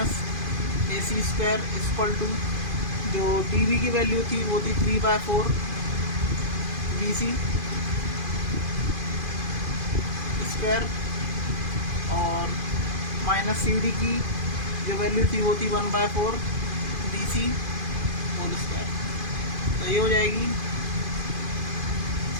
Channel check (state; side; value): late; left; 2.5 ms